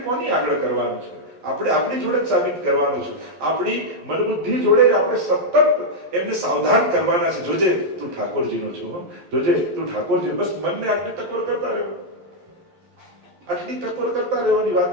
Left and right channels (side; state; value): left; late; 11 ms